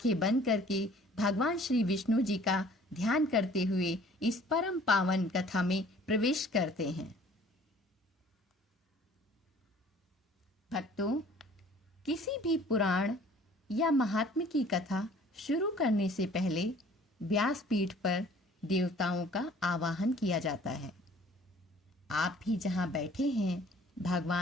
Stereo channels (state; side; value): normal; both; correlation 0.53